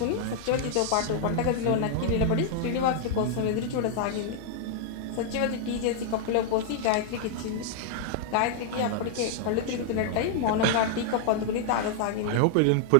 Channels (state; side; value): different; both; correlation -0.01